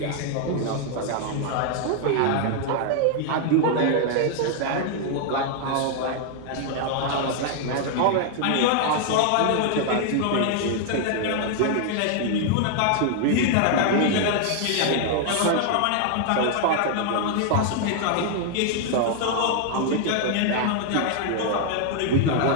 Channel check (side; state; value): both; different; correlation 0.00